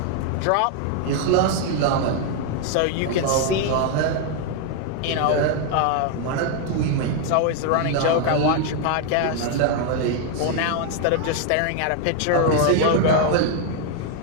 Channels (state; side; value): different; both; correlation 0.00